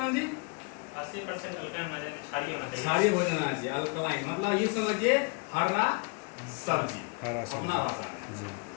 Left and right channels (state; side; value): quieter; right; 34.9 dB